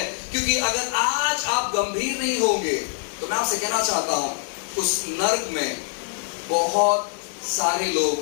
क्योंकि अगर आज आप गंभीर नहीं होंगे तो मैं आपसे कहना चाहता हूं, उस नर्क में बहुत सारे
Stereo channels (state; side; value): silent; right; digital silence